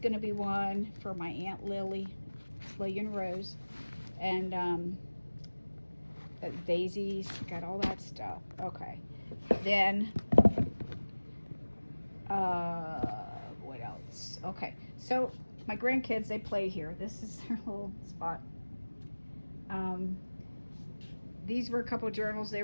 to be one for my Aunt Lily and Rose, and daisies, got all that stuff. Okay, then what else? Okay, so my grandkids, they play here. This is their little spot. These were a couple journals they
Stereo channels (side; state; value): both; inverted; correlation -1.00